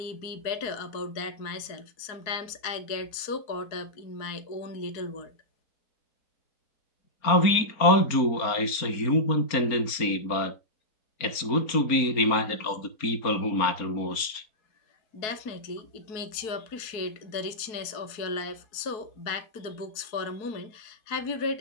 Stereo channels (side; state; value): right; late; 4.3 ms